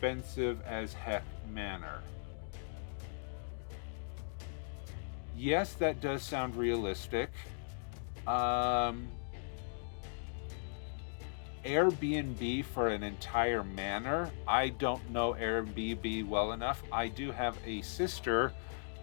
as heck manor. Yes, that does sound realistic. Airbnb for an entire manor. I don't know Airbnb well enough. I do have a sister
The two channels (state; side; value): silent; right; digital silence